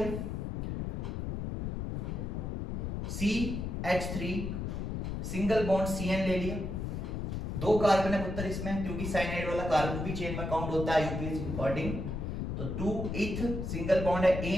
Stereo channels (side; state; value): left; noise; rumble, 4 dB below the sound